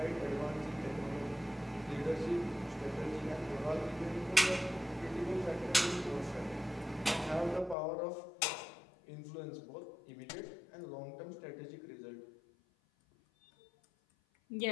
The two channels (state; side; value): drops out; right; at 7.8 s